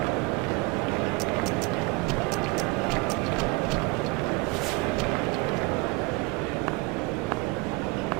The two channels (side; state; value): left; quieter; 24.8 dB